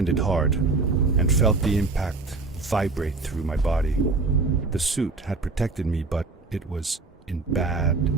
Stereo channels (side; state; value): left; quieter; 3.8 dB